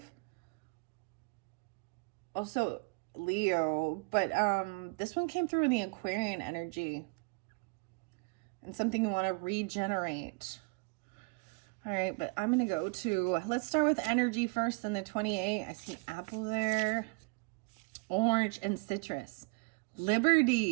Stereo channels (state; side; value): quieter; left; 30.1 dB